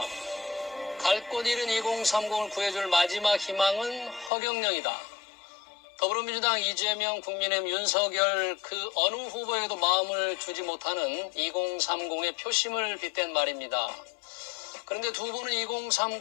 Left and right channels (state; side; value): drops out; right; at 4.3 s